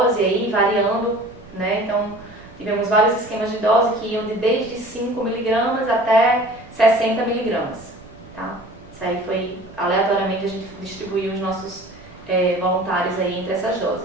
aí, variando, né? Então, tivemos vários esquemas de dose que iam desde 5 miligramas até 60 miligramas, tá? Isso aí foi, aleatoriamente, a gente distribuiu os nossos voluntários aí entre essas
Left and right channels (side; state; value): right; noise; rumble, 22 dB below the sound